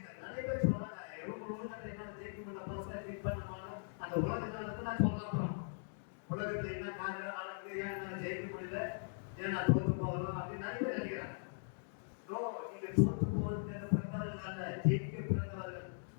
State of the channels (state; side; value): silent; right; digital silence